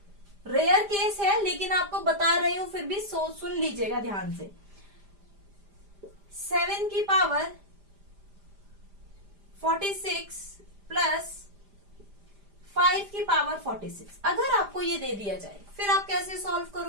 रेयर केस है लेकिन आपको बता रही हूं, फिर भी सुन लीजिएगा ध्यान से। 7 की पावर 46 प्लस 5 की पावर 46, अगर आपको ये दे दिया जाए, फिर आप कैसे सॉल्व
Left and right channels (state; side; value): late; left; 5.0 ms